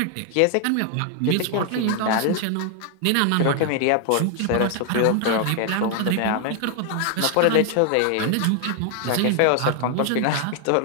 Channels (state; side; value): different; both; correlation 0.00